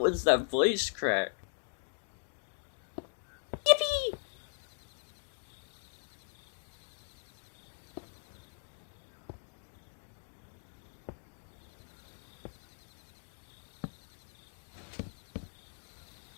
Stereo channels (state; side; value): silent; right; digital silence